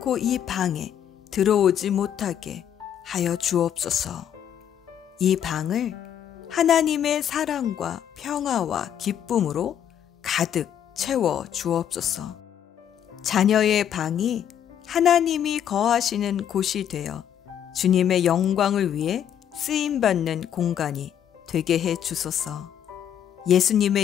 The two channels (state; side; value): quieter; right; 9.5 dB